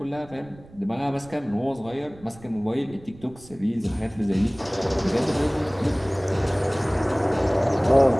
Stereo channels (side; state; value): right; noise; rumble, 22 dB below the sound